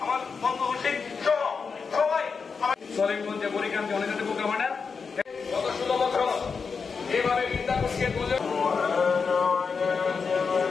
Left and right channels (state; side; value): quieter; right; 5.3 dB